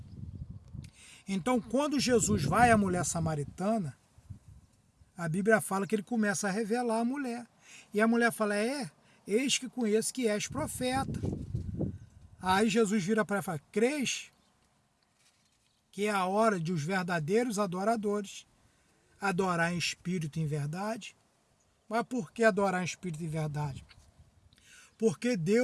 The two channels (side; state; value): both; identical; correlation 1.00